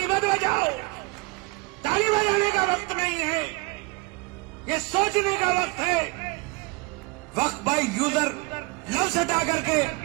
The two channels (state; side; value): quieter; left; 25.8 dB